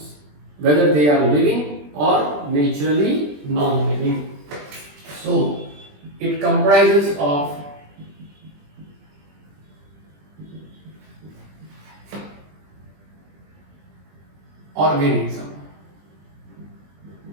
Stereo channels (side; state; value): left; late; 20 ms